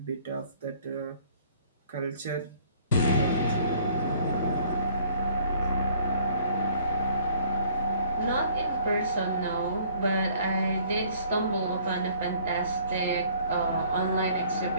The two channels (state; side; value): inverted; both; correlation -0.57